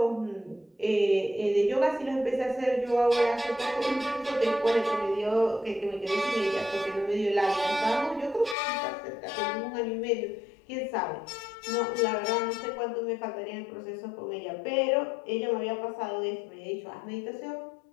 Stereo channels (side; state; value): right; drops out; at 8.6 s